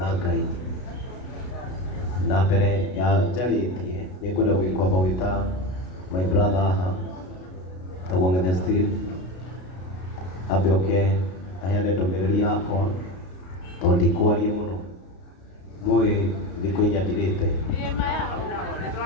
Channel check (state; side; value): late; right; 32 ms